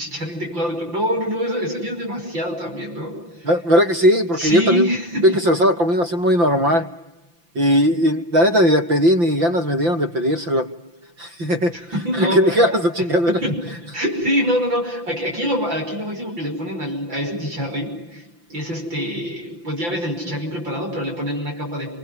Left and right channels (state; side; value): late; left; 5.9 ms